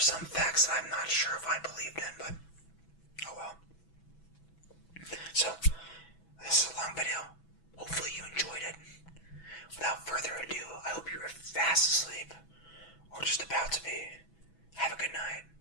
facts that I'm not sure if I believed in, but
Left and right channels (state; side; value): late; right; 6.1 ms